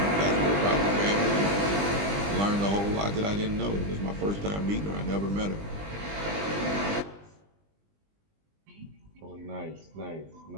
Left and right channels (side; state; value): left; late; 20 ms